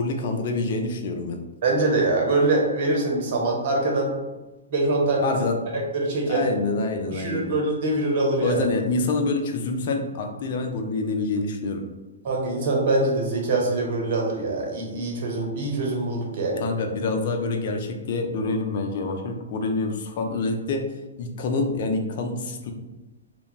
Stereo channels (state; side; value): inverted; both; correlation -0.31